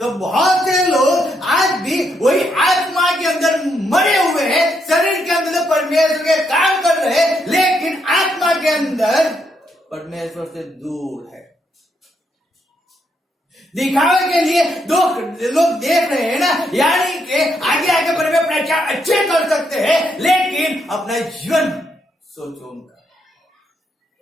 बहुत से लोग आज भी वही आत्मा के अंदर मरे हुए हैं, शरीर के अंदर परमेश्वर के काम कर रहे हैं, लेकिन आत्मा के अंदर परमेश्वर से दूर है। दिखावे के लिए दो लोग देख रहे हैं ना, यानी कि आगे आगे बढ़े प्रचार अच्छे कर सकते हैं, लेकिन अपना जीवन सोचो उनका।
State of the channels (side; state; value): both; normal; correlation 0.77